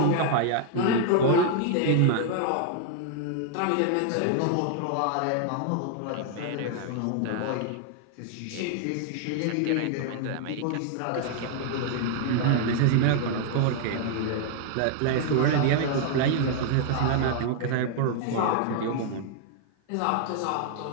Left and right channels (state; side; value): different; both; correlation 0.00